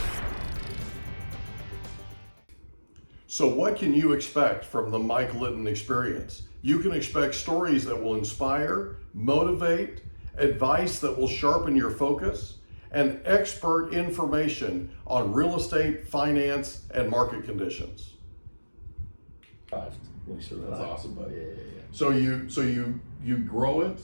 So what can you expect from the Mike Litton Experience? You can expect stories that will inspire, motivate, advice that will sharpen your focus, and expert information on real estate, finance, and market conditions. That's awesome, buddy. Yeah. So you grow it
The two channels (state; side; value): inverted; both; correlation -1.00